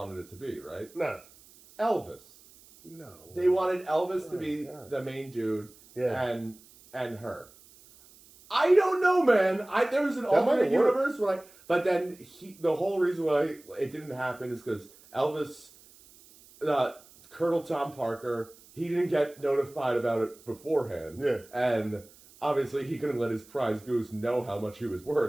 it to be, right? No. Elvis. No. They wanted Elvis to be God. the main dude and her. I don't know, man. There was an alternate universe where but then the whole reason why it didn't happen is because Elvis, Colonel Tom Parker... He didn't get notified about it beforehand. Yeah. And obviously he couldn't let his prize goose know how much he was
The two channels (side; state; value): right; noise; hiss, 25 dB below the sound